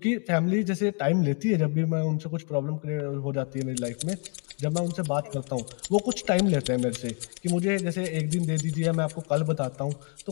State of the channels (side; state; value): right; quieter; 37.6 dB